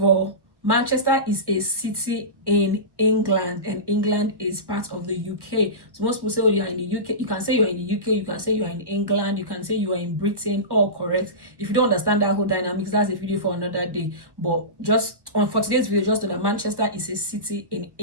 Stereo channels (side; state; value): left; late; 1.1 ms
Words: all, Manchester is a city in England, and England is part of the UK. So most people say, oh, you're in the UK. You can say you're in the UK, you can say you're in England, you can say you are in Britain, all correct. If you don't understand that whole dynamics, that's a video for another day. But just for today's video, just know that Manchester is a city in